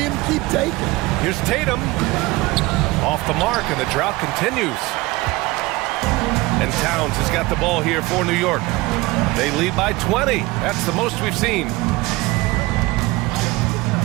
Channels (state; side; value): quieter; left; 21.3 dB